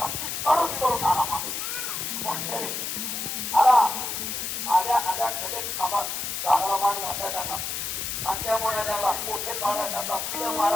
करून आला. आल्या खडेच खांबात झाडाला मान घासायचा का, आणि त्यामुळे त्याला मोठे पाडायचा का, पिढं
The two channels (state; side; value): noise; left; hiss, 3 dB below the sound